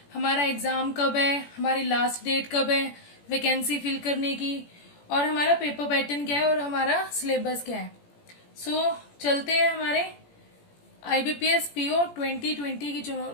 हमारा एग्जाम कब है, हमारी लास्ट डेट कब है वैकेंसी फिल करने की, और हमारा पेपर पैटर्न क्या है और हमारा सिलेबस क्या है। चलते हैं हमारे IBPS PO 2020 की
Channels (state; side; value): late; right; 17 ms